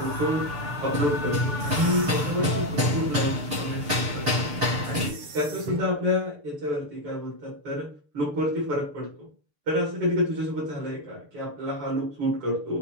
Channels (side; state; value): left; late; 6.8 ms